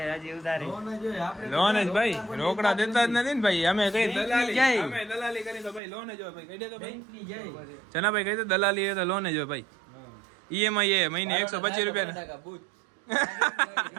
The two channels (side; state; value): left; drops out; at 5.8 s